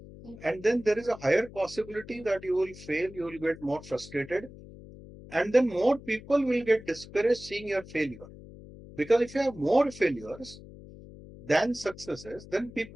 And then there is a higher possibility that you will fail, you will get more frustrated, and then more people will get discouraged seeing your failure. Because if you have more failures than successes, then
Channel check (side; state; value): left; noise; hum, 17 dB below the sound